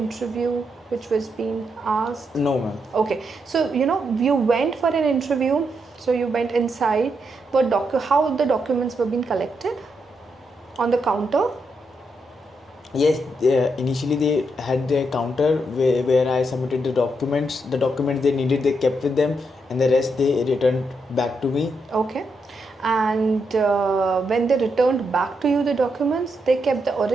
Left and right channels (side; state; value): both; normal; correlation 0.81